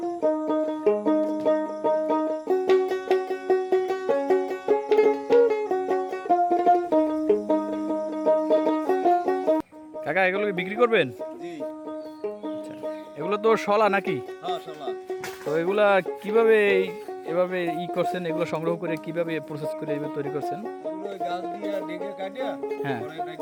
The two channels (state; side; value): identical; both; correlation 1.00